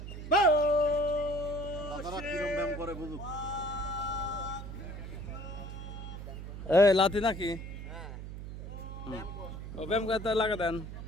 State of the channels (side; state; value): right; noise; hum, 9 dB below the sound